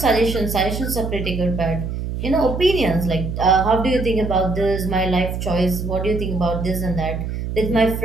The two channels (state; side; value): noise; right; hum, 4 dB below the sound